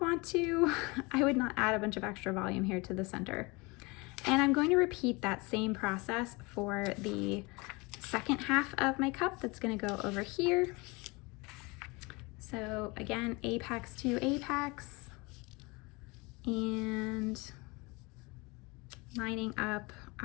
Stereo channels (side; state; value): right; quieter; 26.1 dB